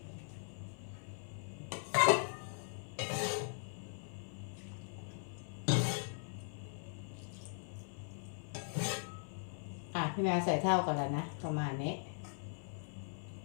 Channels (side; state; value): right; silent; 51 dB below the other